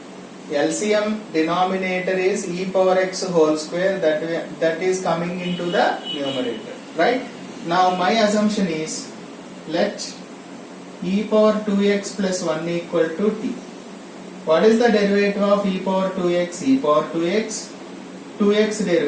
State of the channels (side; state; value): both; identical; correlation 1.00